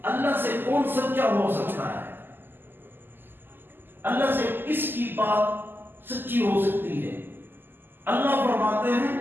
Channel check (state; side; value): late; left; 0.094 ms